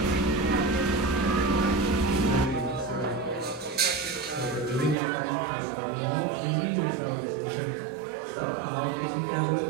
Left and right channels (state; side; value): drops out; left; at 5.0 s